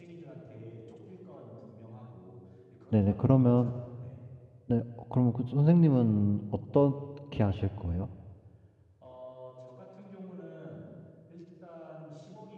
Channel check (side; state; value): both; identical; correlation 1.00